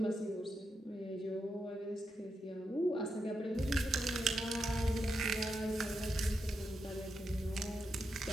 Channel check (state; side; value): normal; both; correlation 0.85